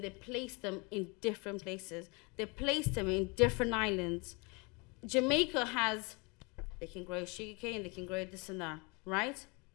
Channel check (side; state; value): right; quieter; 29.6 dB